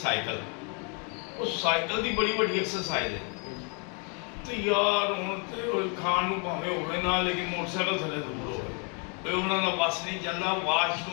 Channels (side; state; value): right; quieter; 34.7 dB